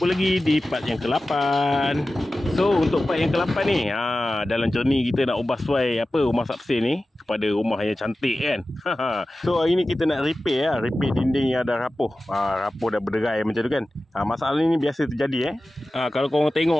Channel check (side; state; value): both; normal; correlation 0.95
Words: lagi di part yang ke-8. So untuk part yang ke-8 ni, dalam journey kita nak ubah suai rumah Sapsir ni kepada rumah yang cantik kan. So hari ni kita nak repair dinding yang dah rapuh. Rapuh dah berderai macam tu kan. Masalah ni biasa terjadi kalau korang